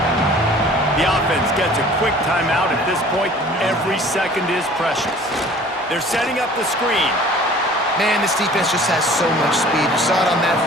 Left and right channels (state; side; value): normal; both; correlation 0.48